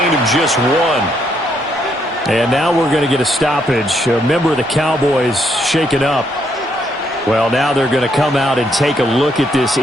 of just 1. And now we're going to get a stoppage. A member of the Cowboys shaken up. Well, now they're going to come out and take a look at this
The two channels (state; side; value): normal; both; correlation 0.74